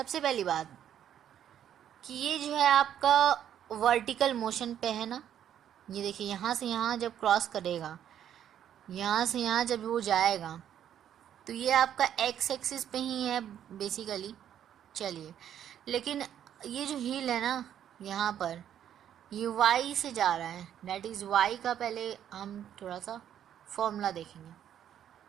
पहली बात कि ये जो है आपका वर्टिकल मोशन पे है ना, ये देखिए यहाँ से यहाँ जब क्रॉस करेगा, यहाँ से यहाँ जब वो जाएगा तो ये आपका एक्स एक्सिस पे ही है बेसिकली। चलिए, लेकिन ये जो हील है ना यहाँ पर, ये y से जा रहा है, दैट इज़ y का पहले हम थोड़ा सा फॉर्मूला देखेंगे।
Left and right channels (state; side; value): quieter; left; 10.1 dB